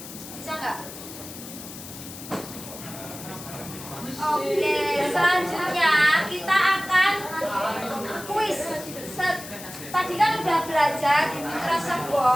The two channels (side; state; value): left; noise; hiss, 13 dB below the sound